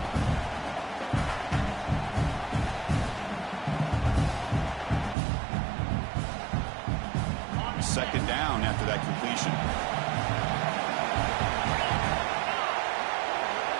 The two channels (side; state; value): left; drops out; at 5.2 s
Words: Second down after that completion.